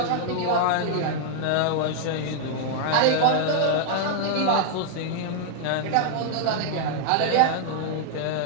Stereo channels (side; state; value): both; different; correlation -0.01